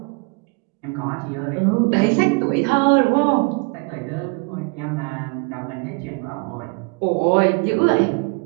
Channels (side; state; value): left; quieter; 32.0 dB